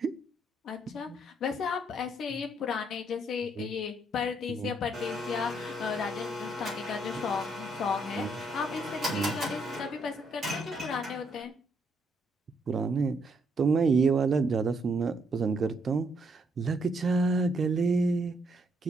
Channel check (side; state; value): both; normal; correlation 0.72